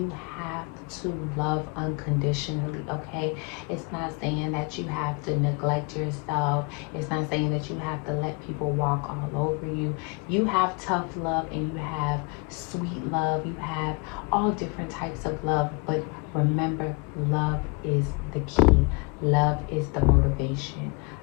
have to love unconditionally, okay? It's not saying that you have to neglect yourself. It's not saying that you have to let people walk all over you. You have tough love and you have sweet love. You have all different types of love, but remember, love is the key. Love is the motivation.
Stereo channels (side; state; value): right; quieter; 29.2 dB